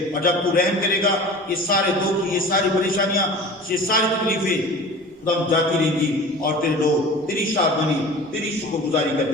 اور جب تو رحم کرے گا یہ سارے دکھ، یہ ساری پریشانیاں، یہ ساری تکلیفیں خدا جاتی رہیں گی، اور تیرے لوگ تیری شادمانی تیری شکر گزاری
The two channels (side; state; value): both; normal; correlation 0.39